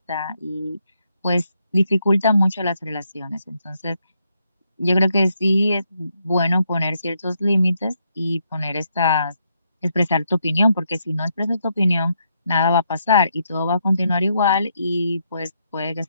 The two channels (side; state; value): both; inverted; correlation -0.77